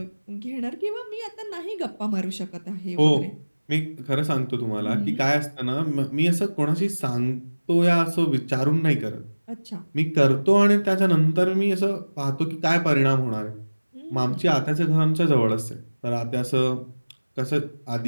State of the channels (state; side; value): inverted; both; correlation -1.00